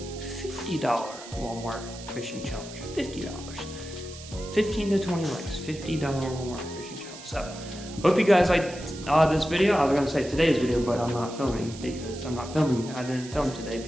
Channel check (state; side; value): noise; right; hiss, 15 dB below the sound